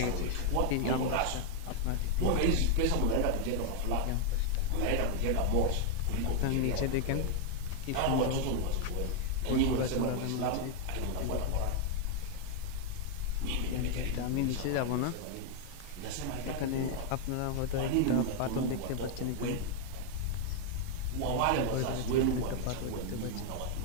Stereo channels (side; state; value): both; different; correlation 0.00